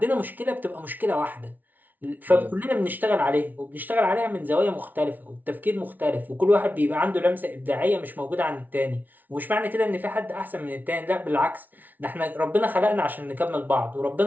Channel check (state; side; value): late; left; 0.082 ms